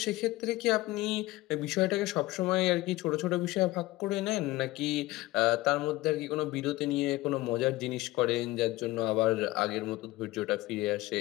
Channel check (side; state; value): right; quieter; 18.9 dB